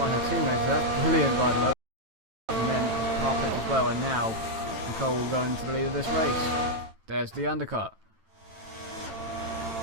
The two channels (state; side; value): late; left; 9.1 ms